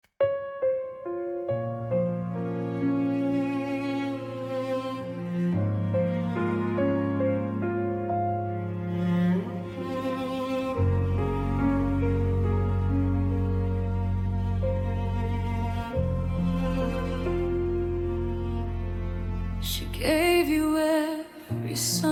She gave you every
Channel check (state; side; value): identical; both; correlation 1.00